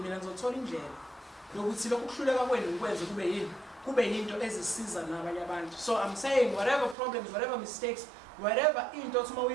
ngizothola indlela yokuthi lokhu kuhluleka kwenu ngikwenze kube yinto ezisiza nabanye abantu. So I'm saying whatever problems, whatever mistakes, whatever into othi uma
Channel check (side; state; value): left; drops out; at 7.0 s